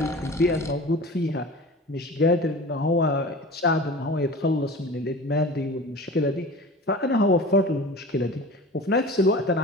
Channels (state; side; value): normal; both; correlation 0.37